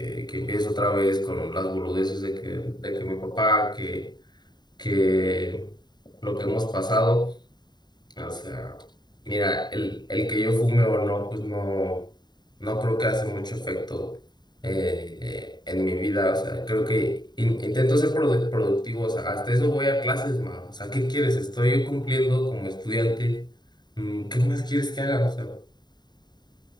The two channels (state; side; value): late; right; 0.21 ms